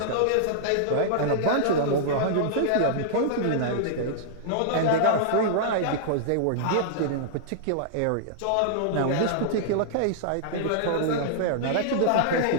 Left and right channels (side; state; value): both; different; correlation -0.02